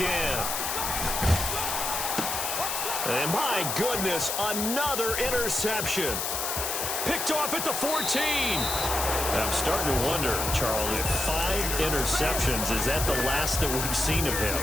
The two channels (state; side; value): noise; left; hiss, 2 dB below the sound